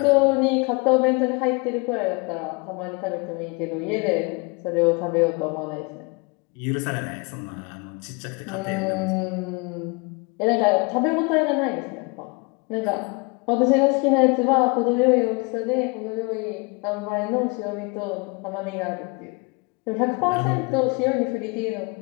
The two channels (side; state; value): right; quieter; 29.9 dB